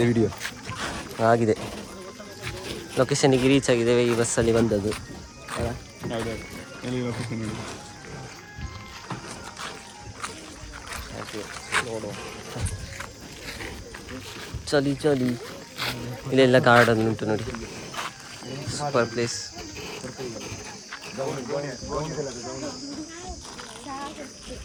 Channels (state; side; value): identical; both; correlation 1.00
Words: ವಿಡಿಯೋ ಆಗಿದೆ. ಲೊಕೇಶನ್ಗೆ ರೀಚ್ ಆಗಿದ್ದೇವೆ. ಈ ಬಸ್ಸಲ್ಲಿ ಬಂದದ್ದು. ಚಲಿ ಚಲಿ. ಇಲ್ಲೆಲ್ಲ ಗಾರ್ಡನ್ ಉಂಟು ನೋಡಿ, ಸೂಪರ್ ಪ್ಲೇಸ್.